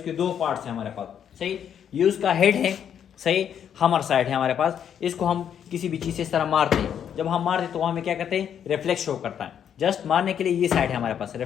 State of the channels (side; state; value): right; quieter; 8.8 dB